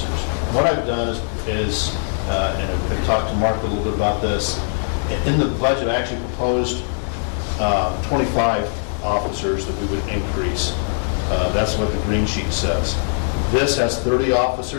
What I've done is and I've talked to Mark a little bit about this, in the budget I actually proposed 25 officers that we would increase. That's what the green sheet says. This has 30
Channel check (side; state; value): right; silent; digital silence